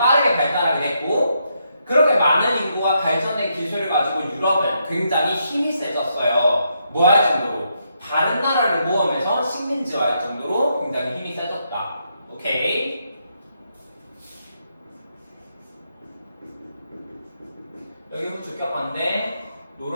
발달하게 됐고 그렇게 많은 인구와 발전된 기술을 가지고 유럽은 굉장히 힘이 세졌어요. 뭐 할 정도로? 다른 나라를 모험해서 식민지화할 정도로 굉장히 힘이 세졌다. 오케이? 여기 주격한데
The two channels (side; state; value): both; inverted; correlation -0.79